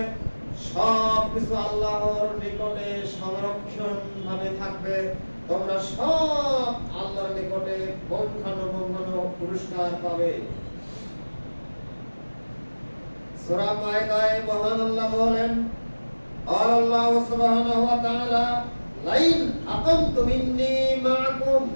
সব কিছু আল্লাহর নিকটে সংরক্ষণ ভাবে থাকবে। তোমরা সব আল্লাহর নিকটে পৌঁছানো পুরস্কার পাবে। সূরা মায়েদায় মহান আল্লাহ বলেন, আল্লাহ সুবহানাহু ওয়া তাআলা লাইন আকামতুম ইন্নী মাআকুম,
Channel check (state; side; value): inverted; both; correlation -1.00